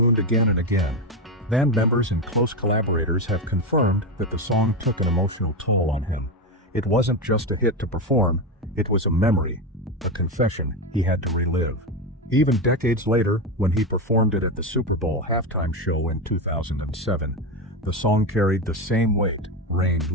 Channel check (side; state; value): both; normal; correlation 0.13